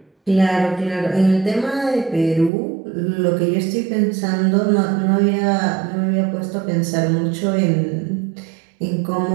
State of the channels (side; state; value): left; drops out; at 2.5 s